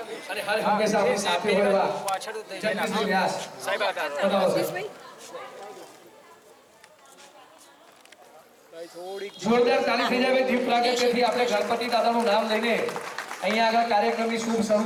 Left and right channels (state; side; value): identical; both; correlation 1.00